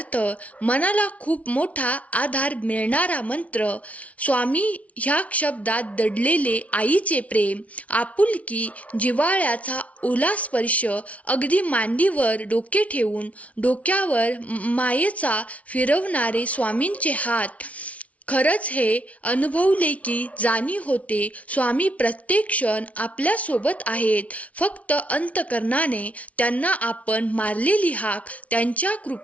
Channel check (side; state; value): right; late; 0.066 ms